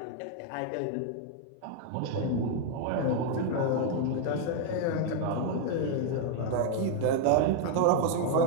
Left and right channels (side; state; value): both; different; correlation 0.00